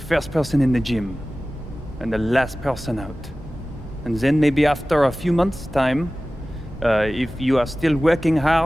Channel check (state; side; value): normal; both; correlation 0.97